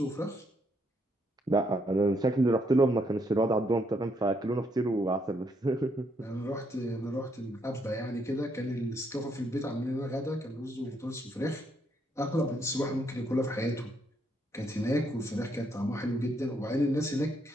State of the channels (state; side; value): normal; both; correlation 0.74